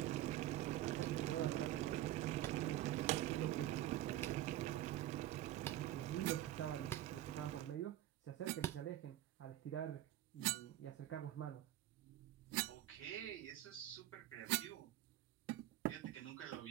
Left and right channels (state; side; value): quieter; left; 13.7 dB